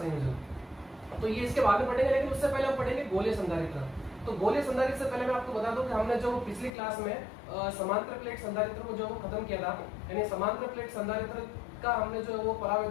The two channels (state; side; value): drops out; right; at 6.7 s